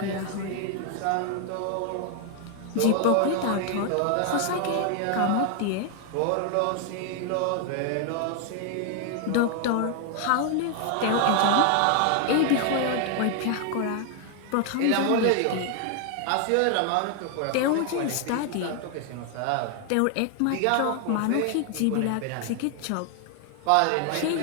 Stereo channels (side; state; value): both; different; correlation 0.00